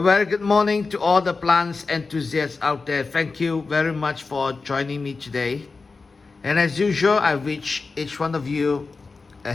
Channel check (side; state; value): right; quieter; 4.2 dB